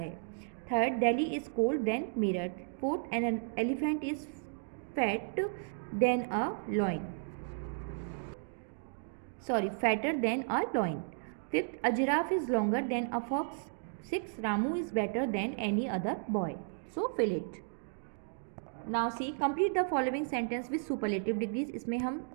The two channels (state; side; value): silent; left; digital silence